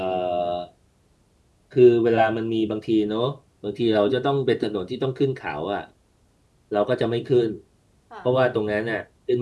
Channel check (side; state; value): both; identical; correlation 1.00